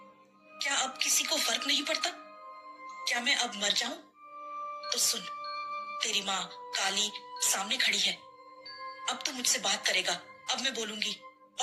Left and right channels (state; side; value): identical; both; correlation 1.00